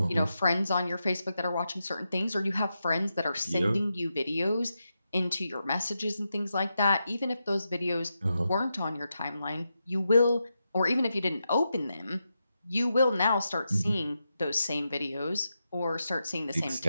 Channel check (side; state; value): both; inverted; correlation -0.87